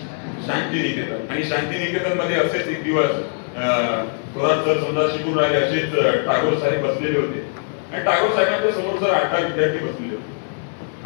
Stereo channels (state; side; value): silent; right; digital silence